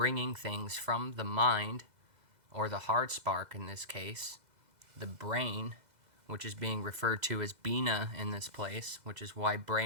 things from the mind, or the hard spark in this case, the brain, which is being referred to as Bina in this place, which is why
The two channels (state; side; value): late; left; 2.0 ms